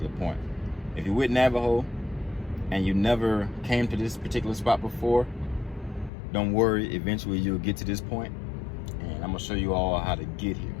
point. If you're with Navajo and you never came to this particular spot before, don't worry, eventually you'll get to this point. And I'm gonna show you all how to get here.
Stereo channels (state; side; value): drops out; right; at 6.1 s